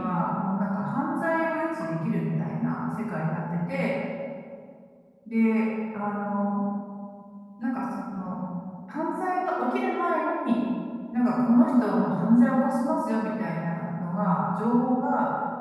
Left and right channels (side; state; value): both; identical; correlation 1.00